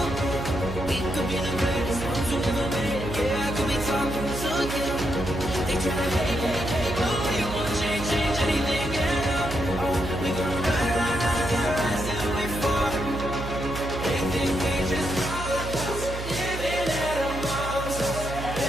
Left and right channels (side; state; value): right; noise; hum, 7 dB below the sound